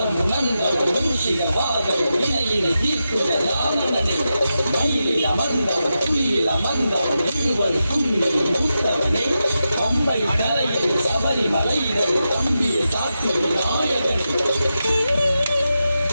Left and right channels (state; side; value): inverted; both; correlation -0.89